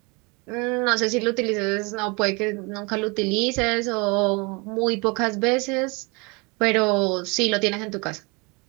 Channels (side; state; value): left; quieter; 29.0 dB